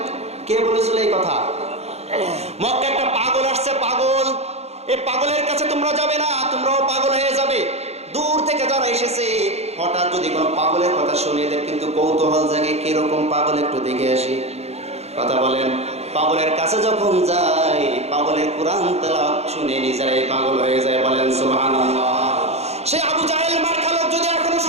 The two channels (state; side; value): late; left; 0.31 ms